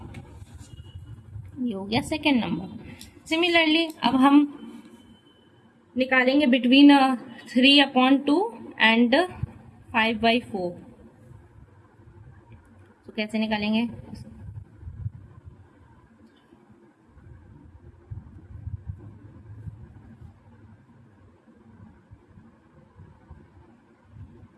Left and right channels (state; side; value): identical; both; correlation 1.00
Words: ये हो गया सेकेंड नंबर। सिमिलरली अब हम निकालेंगे बिटवीन 3/2 एंड 5/4। तो कैसे निकालेंगे?